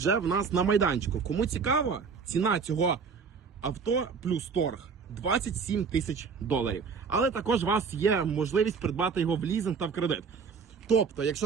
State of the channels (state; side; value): quieter; left; 5.6 dB